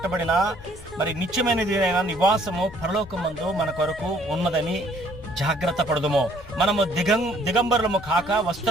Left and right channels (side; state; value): left; noise; rumble, 20 dB below the sound